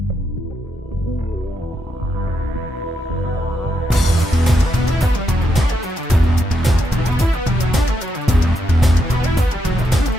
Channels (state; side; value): normal; both; correlation 0.80